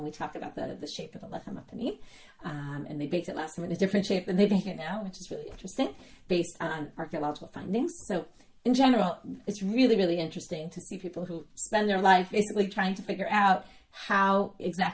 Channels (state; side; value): identical; both; correlation 1.00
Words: we talk about the shape of the lechem hapanim. And they baked it last time in a different shape than they bake it now, which is really interesting, based on archaeological findings. So in general, it's really, really interesting to see people who spend their life basically trying to figure out how